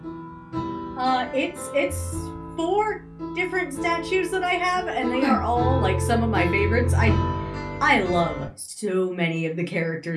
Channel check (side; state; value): both; identical; correlation 1.00